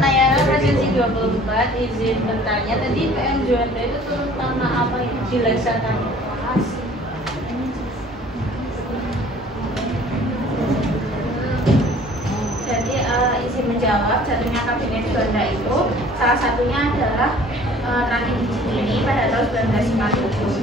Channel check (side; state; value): both; normal; correlation 0.51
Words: Nayara presensi 24, izin bertanya tadi PM Juanda itu turun tanah apa yang dilaksanakan? Jadi izin menjawab, jatuhnya kabinet Juanda itu salah satunya adalah terakhir di Cikini pada tahun